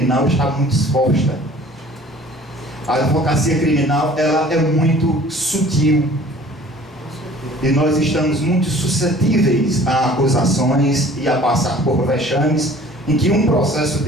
está muito exposta. A advocacia criminal, ela é muito sutil. E nós estamos muito suscetíveis a acusações e a passar por vexames em que um processo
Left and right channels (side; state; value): both; normal; correlation 0.50